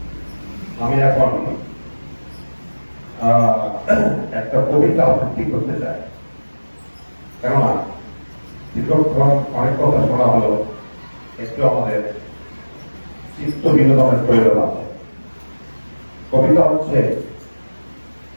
আমি এখন একটা কবিতা আবৃত্তি করতে চাই, কেননা দীর্ঘক্ষণ অনেক কথা শোনা হলো, একটু আমাদের চিত্ত বিনোদনের প্রয়োজন আছে। কবিতা হচ্ছে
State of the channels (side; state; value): both; inverted; correlation -1.00